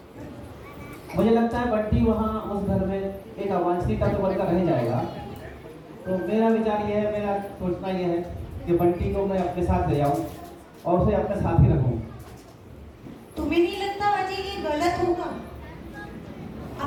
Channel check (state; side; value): identical; both; correlation 1.00